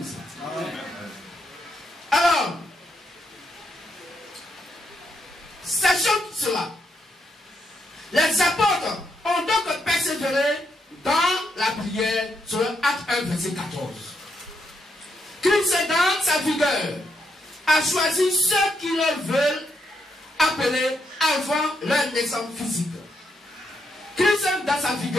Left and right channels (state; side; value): normal; both; correlation 0.79